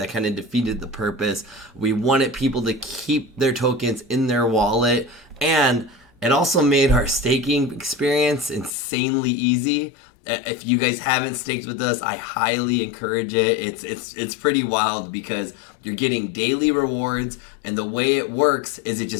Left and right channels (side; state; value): right; drops out; at 8.7 s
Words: kind of defeated the purpose. We wanted people to keep their tokens in their wallet, and it also made our staking experience insanely easy. If you guys haven't staked with us, I highly encourage it. It's pretty wild because you're getting daily rewards, and the way it works is it